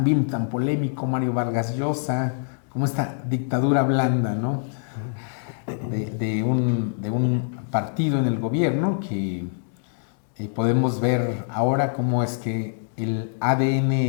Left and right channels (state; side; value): silent; right; digital silence